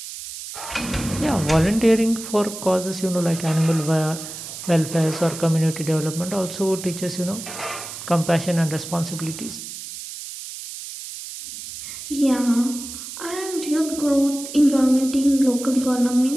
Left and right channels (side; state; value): right; noise; hiss, 10 dB below the sound